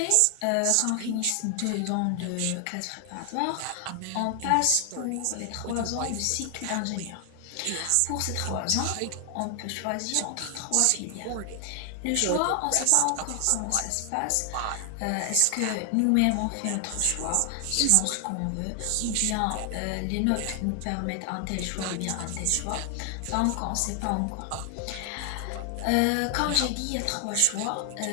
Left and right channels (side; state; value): both; different; correlation 0.00